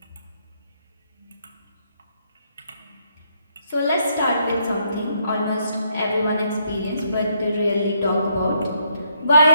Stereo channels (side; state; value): both; inverted; correlation -0.73